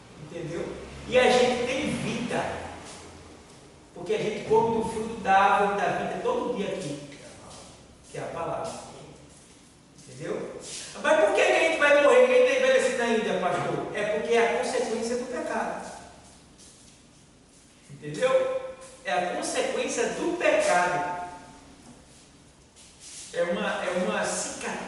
Entendeu? E a gente tem vida, porque a gente come do fruto da árvore da vida todo dia aqui, que é a palavra. Entendeu? Mas por que a gente vai morrer? Quem está envelhecido ainda, pastor? É porque é a consequência do pecado. Entendeu? É a consequência do pecado. É uma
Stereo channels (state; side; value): identical; both; correlation 1.00